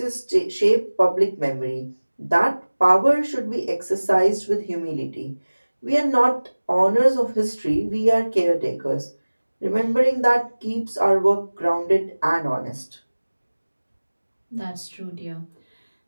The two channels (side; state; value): both; inverted; correlation -1.00